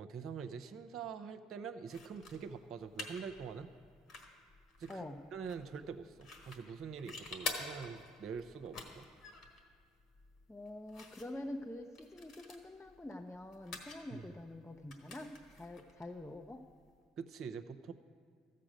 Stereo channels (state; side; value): normal; both; correlation 0.63